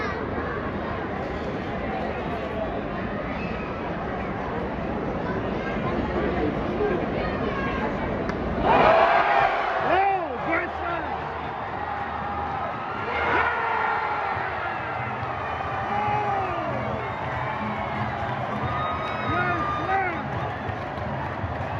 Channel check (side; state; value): both; identical; correlation 1.00